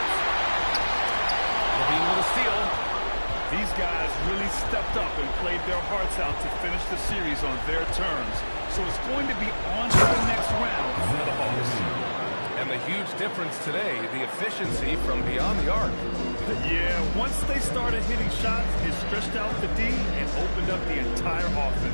Levine with a steal. These guys really stepped up and played their hearts out to finish the series on their terms. So it's going to be on to the next round for the Hawks. And the huge difference today, the efficiency from beyond the arc. Yeah, once they started hitting shots, it stretched out the D and opened up the entire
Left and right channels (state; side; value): inverted; both; correlation -1.00